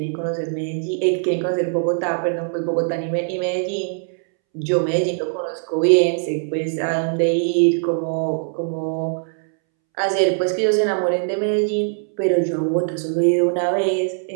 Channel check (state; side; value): silent; left; 65 dB below the other